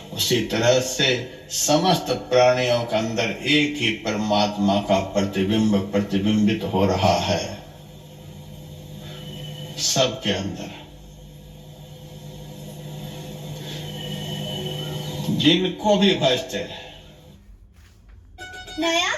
उसी तरह से समस्त प्राणियों के अंदर एक ही परमात्मा का प्रतिबिंब प्रतिबिंबित हो रहा है, सबके अंदर। जिनको भी भजते हैं नया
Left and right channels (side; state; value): both; identical; correlation 1.00